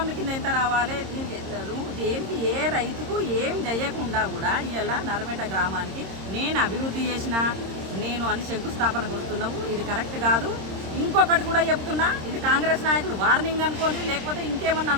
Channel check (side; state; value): left; late; 26 ms